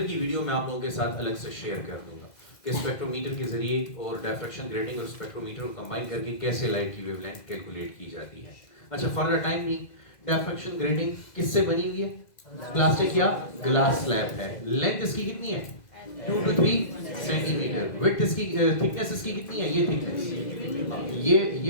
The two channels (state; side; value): late; right; 2.0 ms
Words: की वीडियो मैं आप लोगों के साथ अलग से शेयर कर दूंगा कि स्पेक्ट्रोमीटर के जरिए और डायफ्रैक्शन ग्रेटिंग और स्पेक्ट्रोमीटर को कंबाइन करके कैसे लाइट की वेवलेंथ कैलकुलेट की जाती है। अच्छा, फॉर द टाइम नहीं, डायफ्रैक्शन ग्रेटिंग किससे बनी हुई है? प्लास्टिक या ग्लास स्लैब है। लेंथ इसकी कितनी है? 2 to 3 सेंटीमीटर। विड्थ इसकी, थिकनेस इसकी कितनी है? ये थिकनेस,